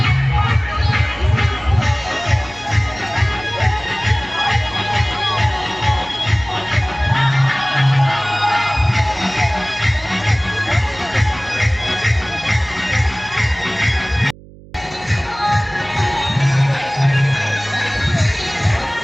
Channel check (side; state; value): right; noise; hum, 21 dB below the sound